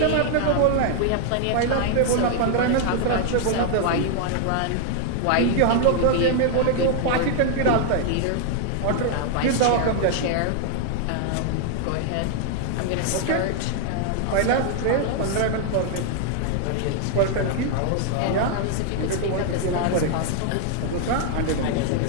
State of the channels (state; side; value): different; both; correlation 0.00